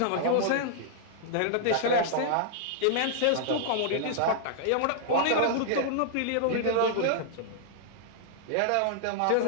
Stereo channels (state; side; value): different; both; correlation -0.01